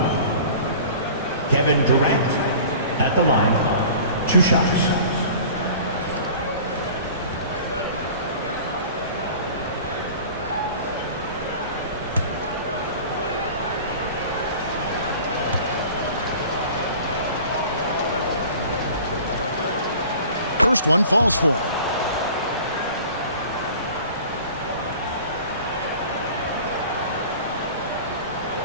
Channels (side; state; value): both; inverted; correlation -0.43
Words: Kevin Durant at the line. 2 shots. First one falls for him.